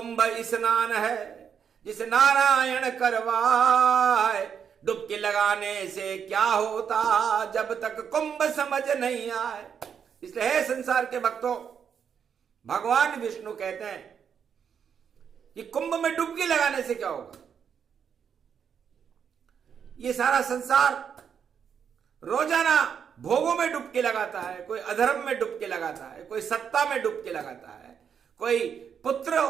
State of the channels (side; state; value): left; quieter; 7.5 dB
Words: स्नान है जिसे नारायण करवाए। डुबकी लगाने से क्या होता जब तक कुंभ समझ नहीं आए। इसलिए है संसार के भक्तों, भगवान विष्णु कहते हैं कि कुंभ में डुबकी लगाने से क्या होगा। ये सारा संसार रोजाना भोगों में डुबकी लगाता है, कोई अधर्म में डुबकी लगाता है, कोई सत्ता में डुबकी लगाता है, कोई पुत्र